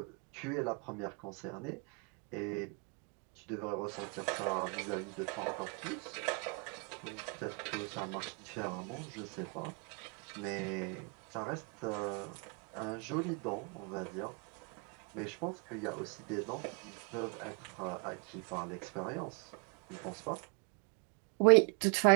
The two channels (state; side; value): quieter; left; 35.9 dB